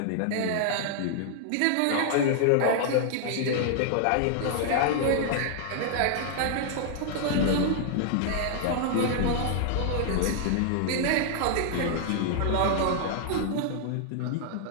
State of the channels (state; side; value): different; both; correlation 0.00